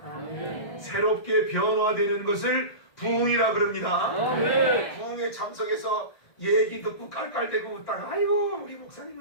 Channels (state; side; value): late; right; 1.5 ms